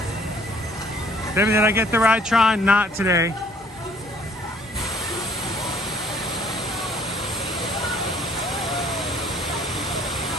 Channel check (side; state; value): both; normal; correlation 0.58